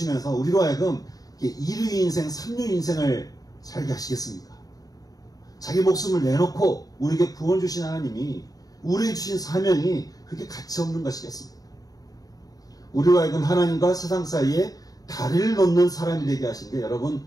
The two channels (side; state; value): right; late; 0.18 ms